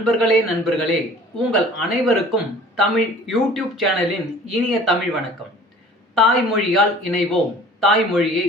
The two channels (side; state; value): both; normal; correlation 0.48